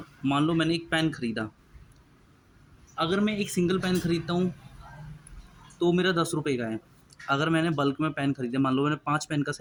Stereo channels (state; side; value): identical; both; correlation 1.00